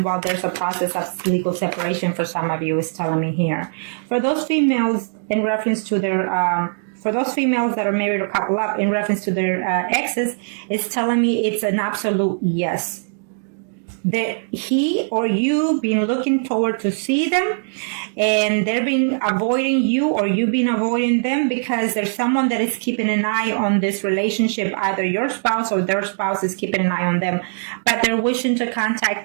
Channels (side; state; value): left; silent; digital silence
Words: while there's a process of legal separation for some of you, is telling me here. For those females, in reference to their... for those females that are married or couple up, in reference to their exes, it's telling me it's an absolute yes. That he or you been looking forward to see them, and they're been avoiding you, or you been avoiding them, because there's someone that is keeping an eye on this relationship. Either your spouse or their spouse is keeping an eye on them, but they're wishing to